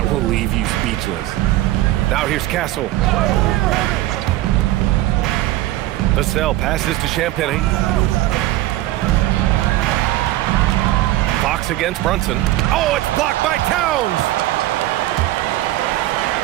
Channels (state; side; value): quieter; left; 15.6 dB